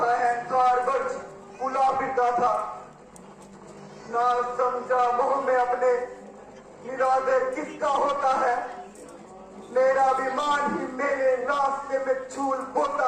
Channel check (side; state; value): both; identical; correlation 1.00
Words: अहंकार वर्ष फूला फिरता था। ना समझा मोह में अपने निरादर किसका होता है। मेरा अभिमान ही मेरे रास्ते में छूल बोता